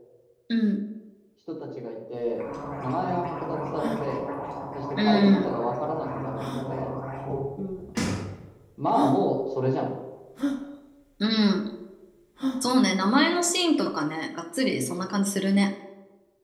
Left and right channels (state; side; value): identical; both; correlation 1.00